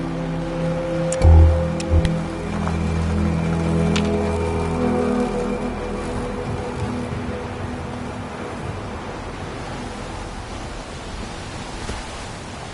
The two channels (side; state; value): both; identical; correlation 1.00